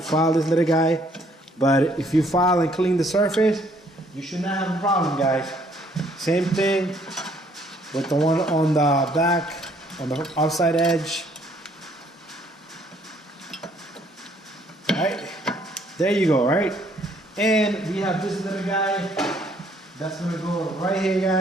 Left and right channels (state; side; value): normal; both; correlation 0.64